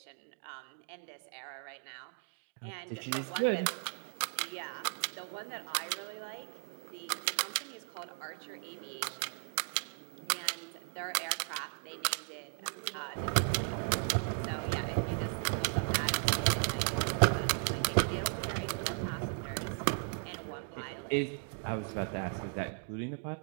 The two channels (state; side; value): silent; left; 54 dB below the other